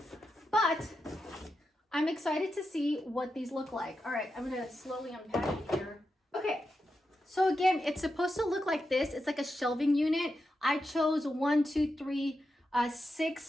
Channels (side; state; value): both; normal; correlation 0.88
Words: But I'm excited to see what these look like. All right, I'm gonna slowly unpack it here. Okay, so again, it's supposed to look like this. It's like a shelving unit. I chose 1, 2, 3,